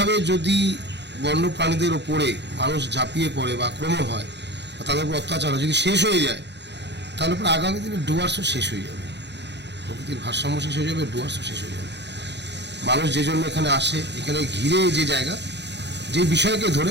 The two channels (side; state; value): left; late; 0.50 ms